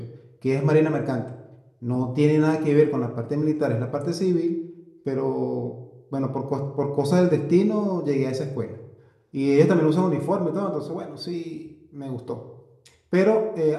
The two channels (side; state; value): both; identical; correlation 1.00